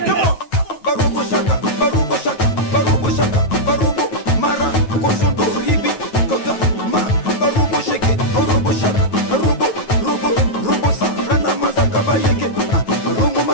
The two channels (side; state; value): right; late; 9.3 ms